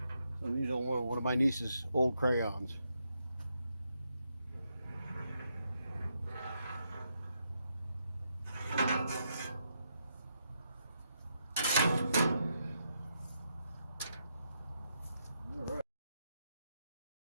I'm using one of my niece's old crayons.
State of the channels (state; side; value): inverted; both; correlation -0.80